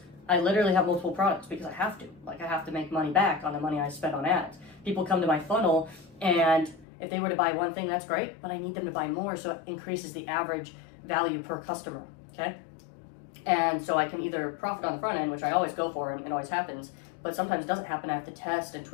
I literally have multiple products because I have to. I have to make money back on the money I spent on ads. People come to my funnel, and if they were to buy one thing, that's great, but I need them to buy more, so it increases the average value per customer, okay? And so I can either profit on the front end, which I always go for and it always happens, but sometimes it doesn't happen. I have to test and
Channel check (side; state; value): right; drops out; at 6.9 s